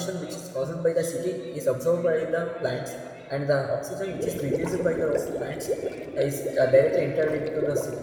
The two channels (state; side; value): identical; both; correlation 1.00